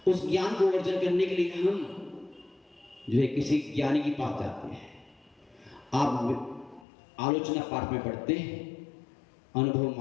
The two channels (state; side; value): drops out; right; at 6.9 s